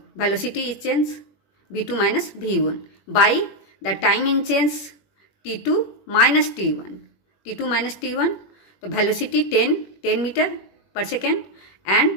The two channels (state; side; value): late; right; 21 ms